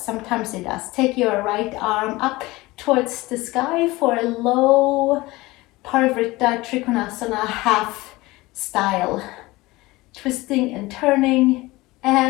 Sometimes it does. Take your right arm up towards the sky for a low Parivrtta Trikonasana half style. Twisting and turning.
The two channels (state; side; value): quieter; right; 20.5 dB